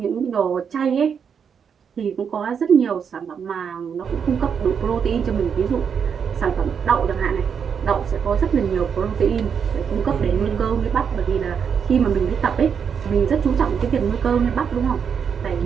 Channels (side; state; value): left; quieter; 7.0 dB